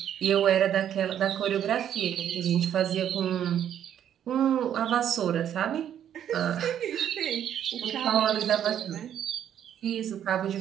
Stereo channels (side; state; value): left; quieter; 9.9 dB